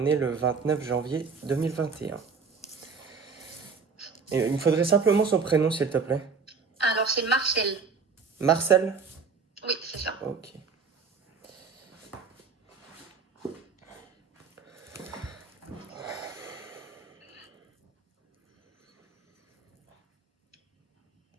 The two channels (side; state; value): left; quieter; 5.2 dB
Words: est le 29 janvier 2021. Et il me faudrait simplement son prénom, s'il te plaît. Alors, c'est Marcel. Marcel? Oui, c'est ça. Ok.